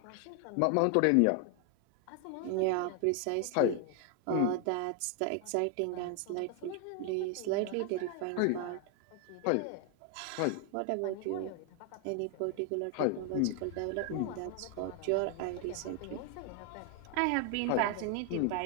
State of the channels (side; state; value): both; different; correlation 0.00